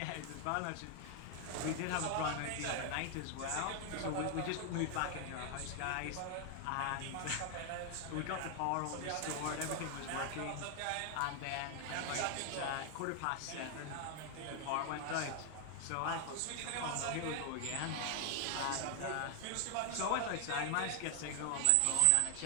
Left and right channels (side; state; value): both; different; correlation 0.00